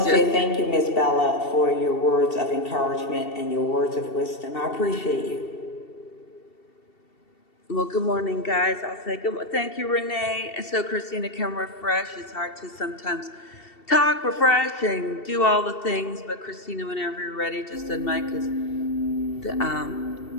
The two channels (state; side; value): late; right; 2.7 ms